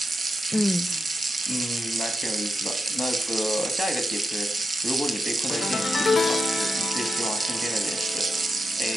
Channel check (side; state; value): both; normal; correlation 0.87